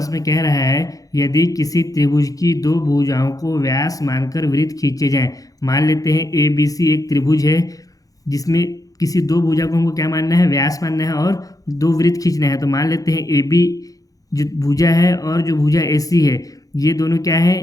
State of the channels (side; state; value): right; late; 0.17 ms